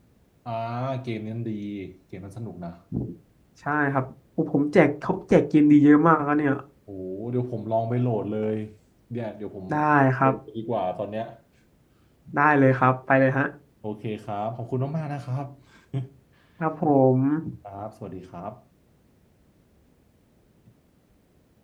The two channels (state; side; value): identical; both; correlation 1.00